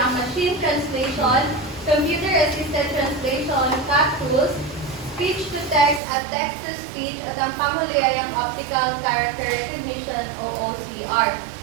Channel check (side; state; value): left; drops out; at 6.0 s